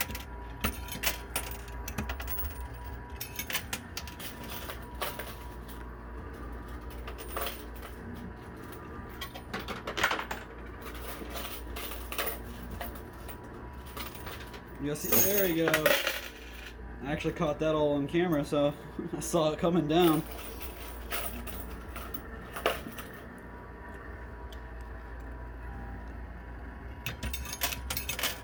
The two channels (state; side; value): identical; both; correlation 1.00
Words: You'll see, there you go. I actually caught that all on camera, so I saw it coming down.